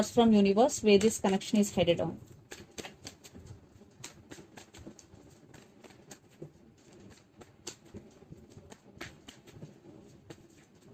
from universe where this connection is headed on.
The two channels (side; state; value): both; identical; correlation 1.00